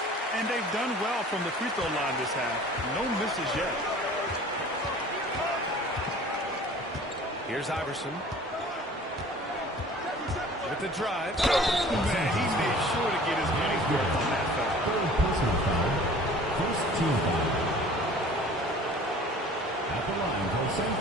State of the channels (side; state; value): both; normal; correlation 0.47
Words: And they've done well from the free throw line this half. No misses yet. Here's Iverson. With the drive. Man, he made sure to get his money's worth on that foul. Third personal foul. First team foul. At the line for San